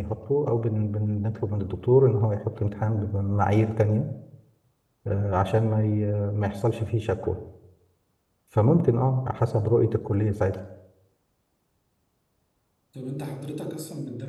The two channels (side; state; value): both; identical; correlation 1.00